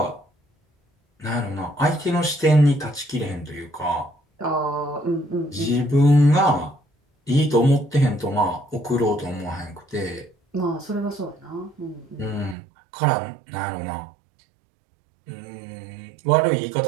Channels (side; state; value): left; drops out; at 12.6 s